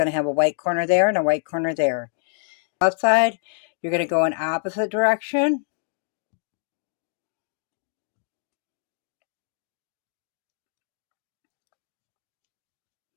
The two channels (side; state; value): right; silent; digital silence